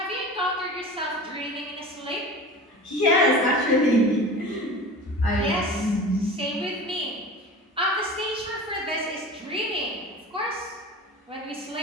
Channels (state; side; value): normal; both; correlation 0.35